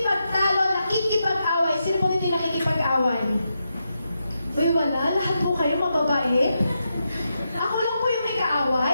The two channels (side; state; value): both; inverted; correlation -0.85